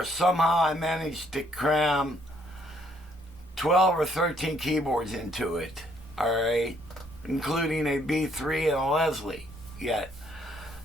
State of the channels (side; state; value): both; normal; correlation 0.68